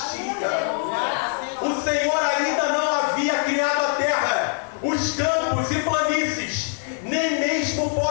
O Senhor ainda não havia criado a terra, os campos e planícies, nem mesmo o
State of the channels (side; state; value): right; silent; 61 dB below the other